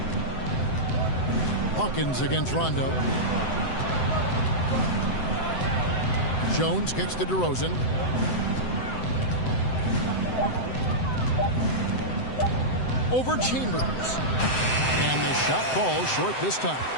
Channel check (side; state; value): right; late; 7.8 ms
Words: Hawkins against Rondo. Jones kicks to DeRozan. Over Chambers. And the shot falls short this time.